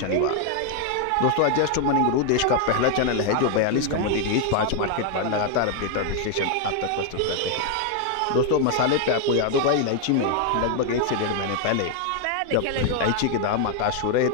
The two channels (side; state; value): both; different; correlation 0.01